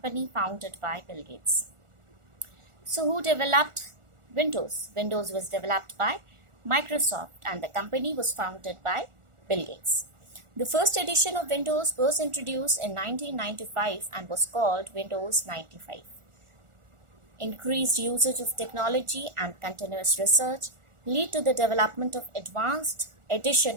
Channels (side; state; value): left; late; 1.4 ms